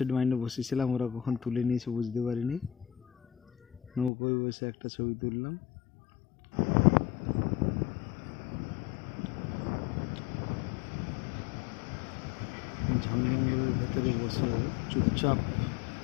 মাইন্ডে বসেছিলাম, ওরা কখন তুলে নিয়েছে বুঝতে পারিনি। নৌকোয় বসে একটা ছবি তুললাম। জঙ্গলের ভেতরে বসে চুপচাপ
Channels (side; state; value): right; drops out; at 4.1 s